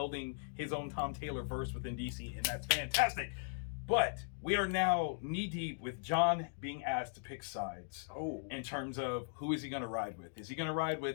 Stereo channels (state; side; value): silent; right; digital silence